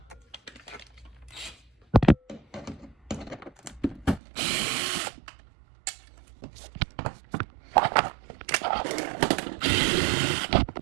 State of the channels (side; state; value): left; drops out; at 4.2 s